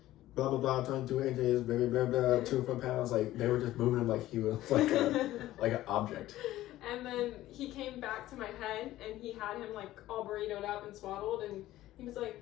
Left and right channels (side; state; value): right; quieter; 15.1 dB